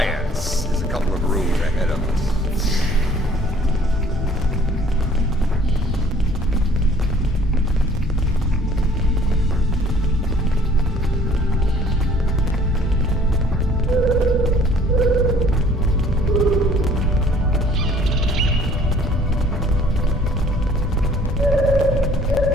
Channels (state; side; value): normal; both; correlation 0.55